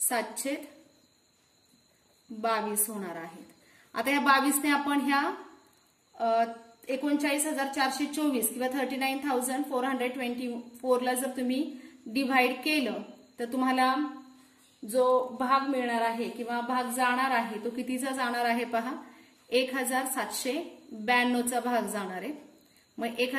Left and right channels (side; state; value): both; identical; correlation 1.00